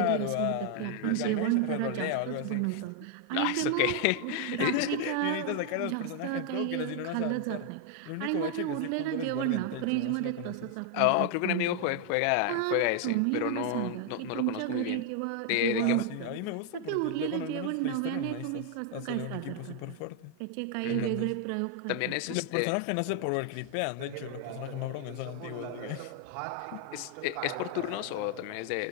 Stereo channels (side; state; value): both; different; correlation 0.00